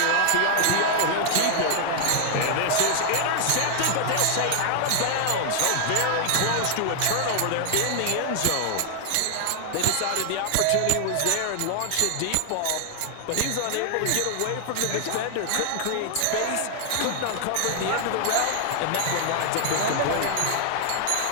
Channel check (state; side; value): different; both; correlation 0.00